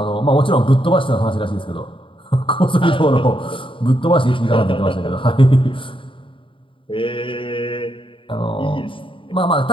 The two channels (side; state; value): right; late; 0.25 ms